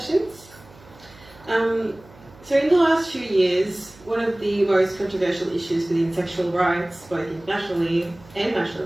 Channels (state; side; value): noise; right; hum, 24 dB below the sound